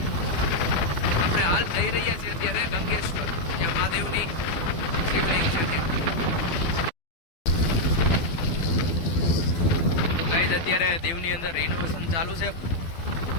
આપણે હાલ જઈ રહ્યા છીએ અત્યારે ગંગેશ્વર, જ્યાં મહાદેવની શિવલિંગ છે ત્યાં. ગાઈસ, અત્યારે દીવની અંદર રિનોવેશન ચાલુ છે.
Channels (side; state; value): right; late; 12 ms